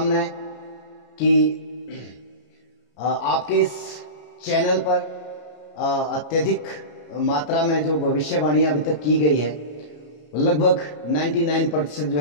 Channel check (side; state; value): right; late; 33 ms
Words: कि आपके इस चैनल पर अत्यधिक मात्रा में जो भविष्यवाणी अभी तक की गई है लगभग 99% जो